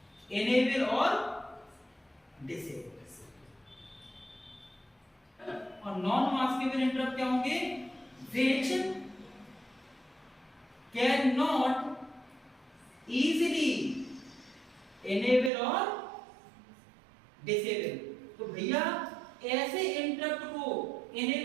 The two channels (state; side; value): drops out; left; at 15.5 s